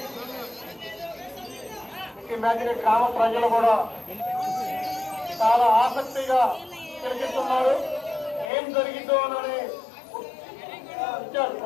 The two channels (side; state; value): right; drops out; at 8.5 s